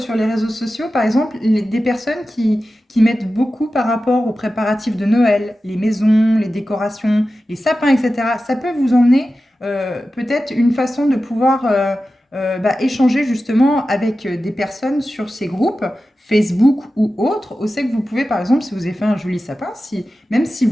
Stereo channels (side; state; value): both; normal; correlation 0.93